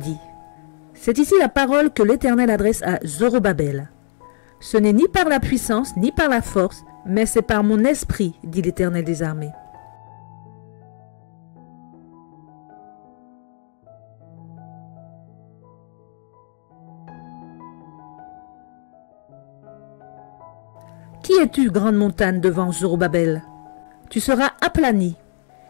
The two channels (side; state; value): right; silent; digital silence